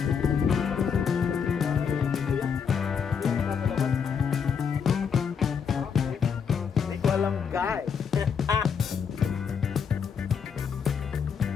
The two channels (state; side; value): quieter; right; 6.7 dB